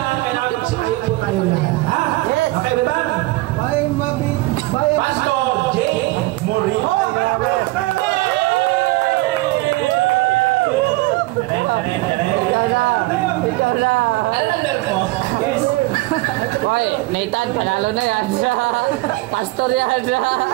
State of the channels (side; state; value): left; quieter; 20.8 dB